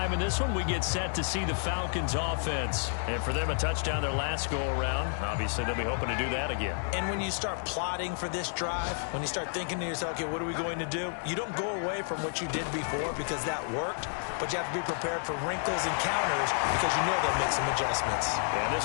in this one, we get set to see the Falcons offense. And for them, a touchdown their last go-around. Obviously, they'll be hoping to do that again. And when you start plotting for this drive, when you start thinking to yourself, okay, what are we going to do? You don't go away from what you did before because that worked, but you have to be prepared for wrinkles and counters because you know they'll make some adjustments. Yeah,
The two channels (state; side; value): silent; right; 57 dB below the other